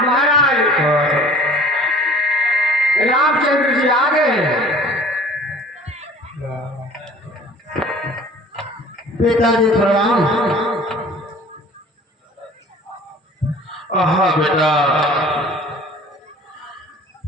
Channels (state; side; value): normal; both; correlation 0.47